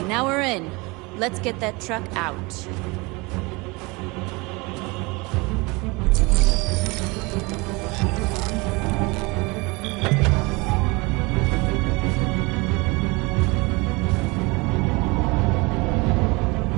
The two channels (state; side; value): quieter; left; 25.7 dB